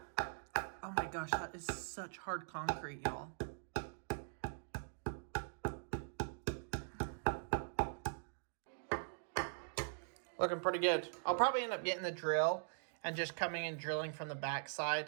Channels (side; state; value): left; silent; digital silence